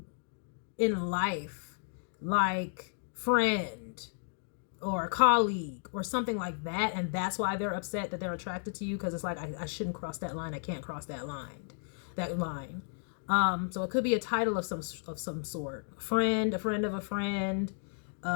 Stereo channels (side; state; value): right; silent; digital silence